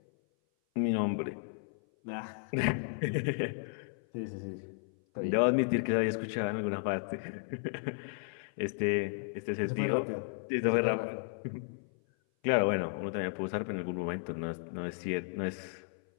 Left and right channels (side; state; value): right; silent; 55 dB below the other